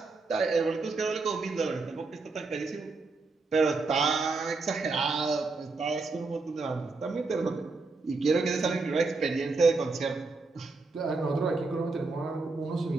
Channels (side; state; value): left; quieter; 3.9 dB